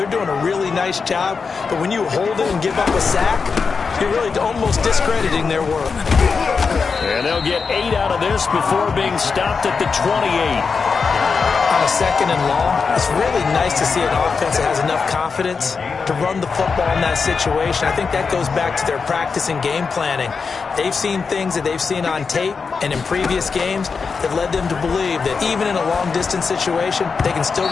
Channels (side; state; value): right; quieter; 5.2 dB